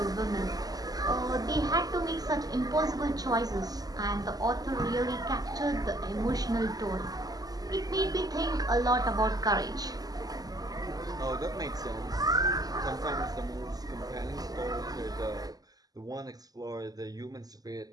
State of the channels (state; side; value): late; left; 0.18 ms